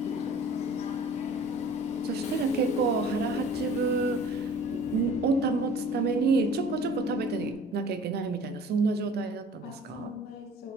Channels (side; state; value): both; normal; correlation 0.48